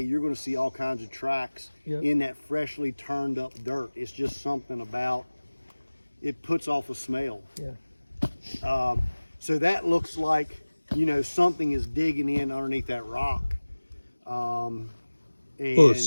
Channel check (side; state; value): both; inverted; correlation -1.00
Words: you're going to see all kinds of tracks Yep. in that freshly turned up dirt. It's just something about it, puts off a smell. Yeah. So that looks like, you know, something is digging in underneath that rock. And Well, the